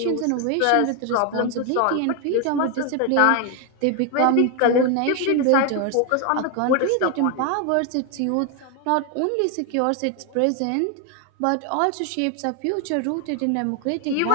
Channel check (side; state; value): both; different; correlation 0.01